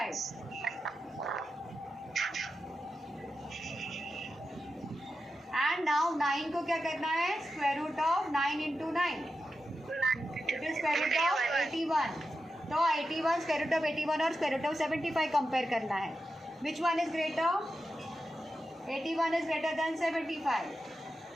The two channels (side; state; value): both; normal; correlation 0.90